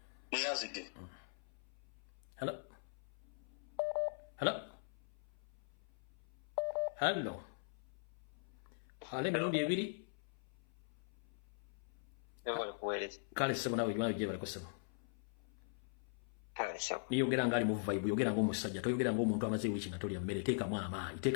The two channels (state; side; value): silent; right; 50 dB below the other